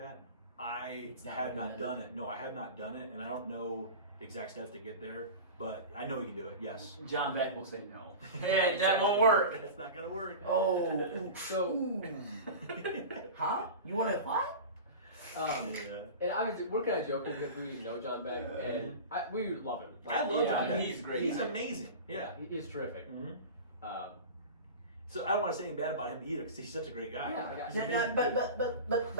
I It's not have not recommended. done it. No, I have not done it, and I don't know the exact steps to get there, but I know you can do it. Yes. John Beck will say no. Yeah, that won't work. That's not gonna work. Oh, So, huh? You want to what? Yeah. and obviously we're kind of joking because we know John Beck, and we love him. I love John Beck. He's great. He's amazing. Yeah. He's terrific. Mhm. Um, So I don't want to say anything bad about him either, because he's such a great guy. Yeah. He's Yeah,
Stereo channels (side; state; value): both; inverted; correlation -0.31